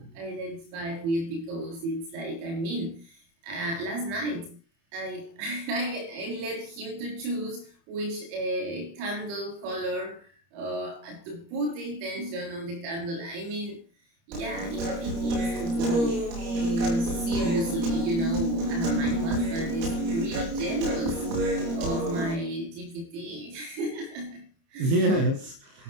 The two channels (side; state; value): left; late; 30 ms